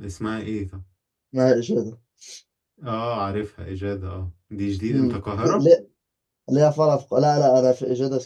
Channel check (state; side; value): identical; both; correlation 1.00